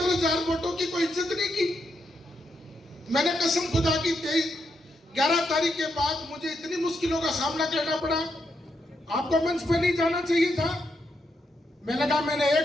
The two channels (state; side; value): normal; both; correlation 0.81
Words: वोटों की कोई इज्जत नहीं की। मैंने कसम खुदा की 11 तारीख के बाद मुझे इतनी मुश्किलों का सामना करना पड़ा, आपको मंच पे नहीं जाना चाहिए था। मैंने कहा मैंने